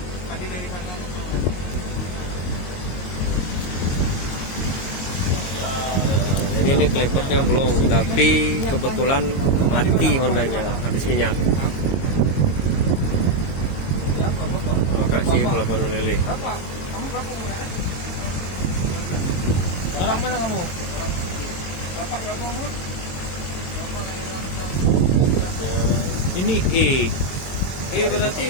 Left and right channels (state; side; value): late; right; 22 ms